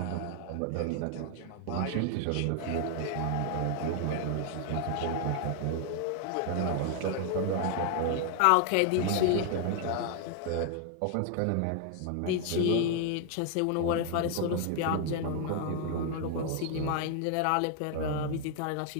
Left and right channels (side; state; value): both; different; correlation 0.00